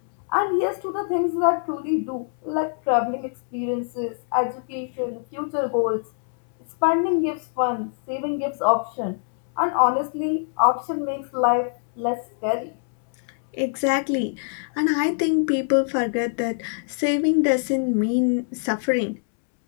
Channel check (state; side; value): silent; right; 63 dB below the other